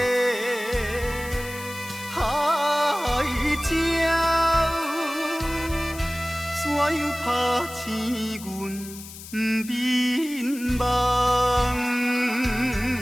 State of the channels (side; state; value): left; noise; hiss, 14 dB below the sound